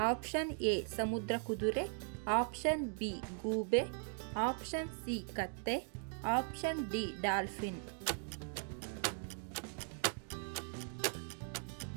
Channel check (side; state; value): left; silent; 52 dB below the other